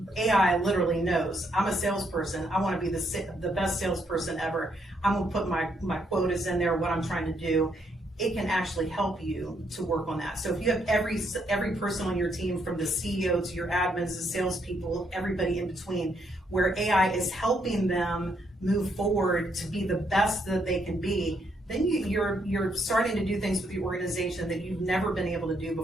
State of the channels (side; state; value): both; normal; correlation 0.74